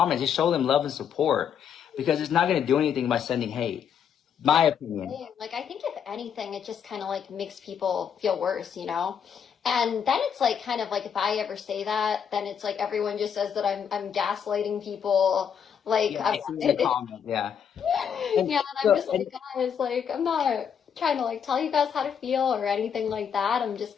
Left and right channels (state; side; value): quieter; right; 7.9 dB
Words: Just show them love and support, because it's not going to do anything by sending hate. My opinion. Like, I think if anything, it just kind of, like, makes people feel worse, you know? And then it's, like, kind of like, if I ever say that, then it's like everyone just says that I'm gaslighting people. Like, yeah, I've seen the comment, yeah. And I'm just like, guys, like, I'm not trying to, like, tell you guys how to feel or anything like that. I'm just